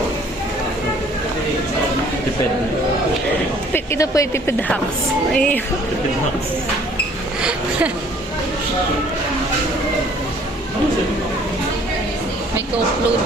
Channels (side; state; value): both; normal; correlation 0.57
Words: Depende. Ito po yung tipid hacks. Ay. May co-upload